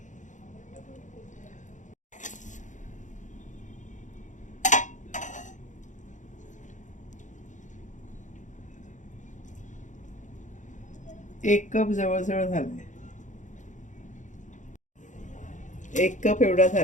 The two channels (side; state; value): right; late; 0.36 ms